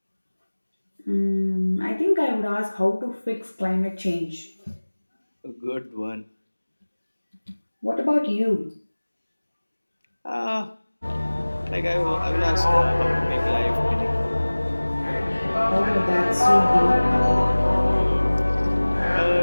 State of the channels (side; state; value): both; inverted; correlation -1.00